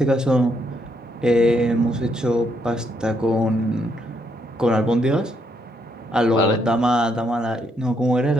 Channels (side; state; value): both; normal; correlation 0.75